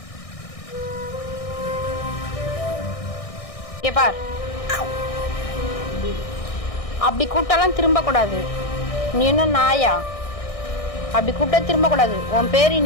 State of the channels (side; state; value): right; late; 1.6 ms